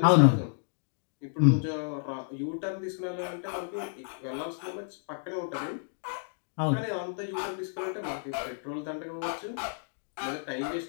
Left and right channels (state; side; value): silent; right; digital silence